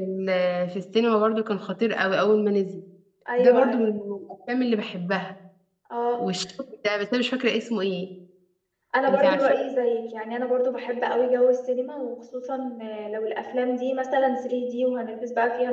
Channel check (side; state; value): both; identical; correlation 1.00